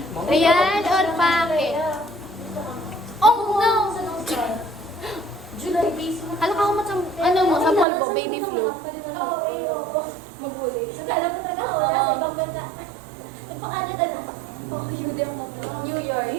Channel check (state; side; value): drops out; left; at 7.9 s